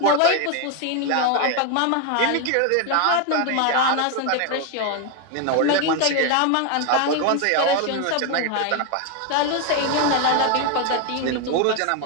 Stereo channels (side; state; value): both; different; correlation 0.01